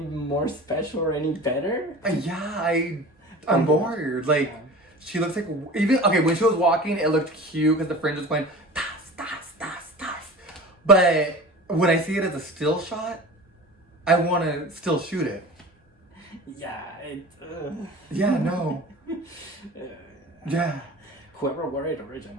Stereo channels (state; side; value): normal; both; correlation 0.38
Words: special or any better. Yeah, I'm bored. Like, she looks like... Okay, when she was walking, it looked cute because the fringe was going... Tas, tas, tas, tas. But when I see it as a still shot, I want to still shoot it. Yeah, Yeah, no. Yeah. Whoever wore it